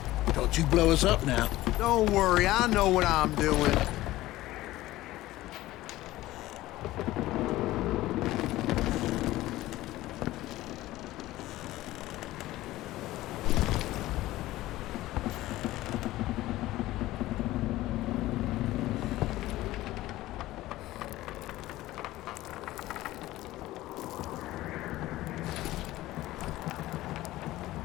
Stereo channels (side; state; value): right; quieter; 16.6 dB